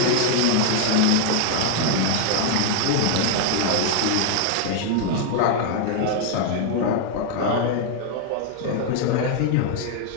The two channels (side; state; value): both; different; correlation 0.00